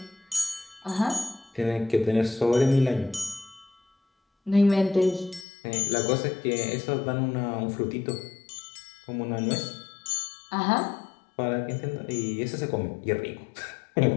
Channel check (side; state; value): right; drops out; at 5.5 s